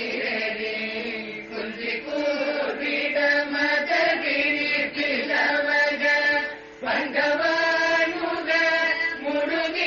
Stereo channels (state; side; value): identical; both; correlation 1.00